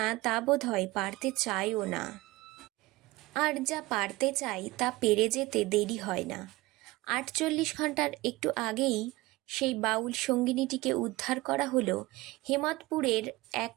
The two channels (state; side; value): quieter; left; 20.3 dB